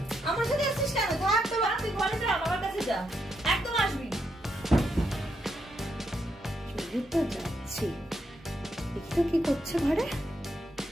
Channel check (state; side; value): normal; both; correlation 0.80